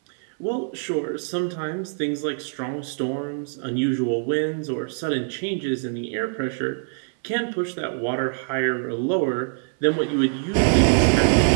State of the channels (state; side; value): silent; left; 63 dB below the other